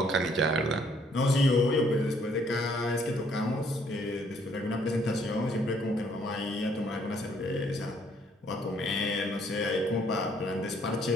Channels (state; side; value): normal; both; correlation 0.65